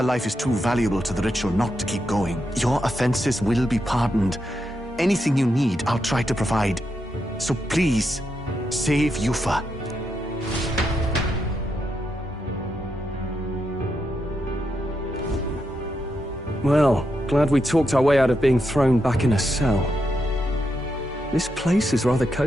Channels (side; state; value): both; normal; correlation 0.83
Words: life is too valuable to the ritual not to keep going. Your offenses will be pardoned. Anything you need, I'll try to provide. So please, save Yufa. Well, glad we talked our way out of being thrown back in a cell. This place is rather